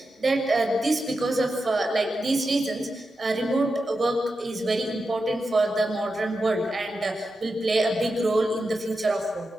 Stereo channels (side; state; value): both; normal; correlation 0.89